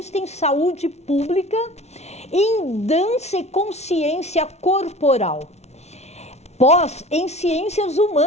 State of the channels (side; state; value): right; late; 0.31 ms